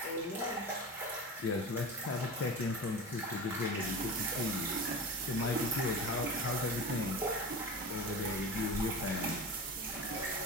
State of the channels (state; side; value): normal; both; correlation 0.29